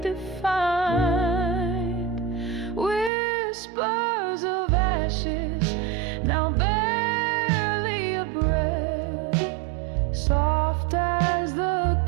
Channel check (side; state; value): left; drops out; at 3.1 s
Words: defined. Whispers of ashes, now barely a breath, soft as the